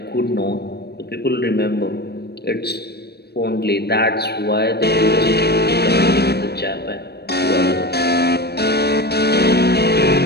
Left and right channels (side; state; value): right; late; 0.47 ms